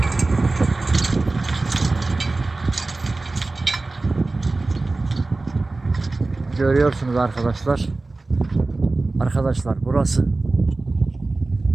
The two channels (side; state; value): left; quieter; 3.3 dB